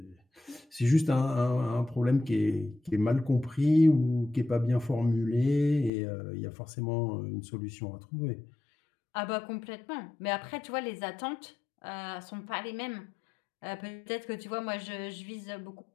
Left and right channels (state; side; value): drops out; right; at 5.9 s